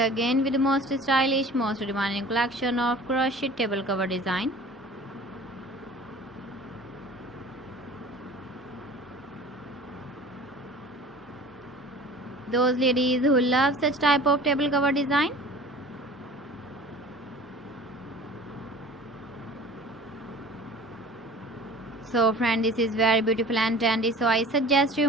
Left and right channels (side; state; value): both; normal; correlation 0.43